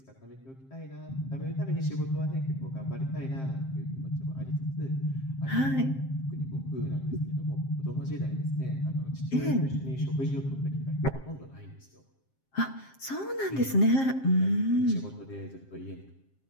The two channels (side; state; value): right; late; 7.5 ms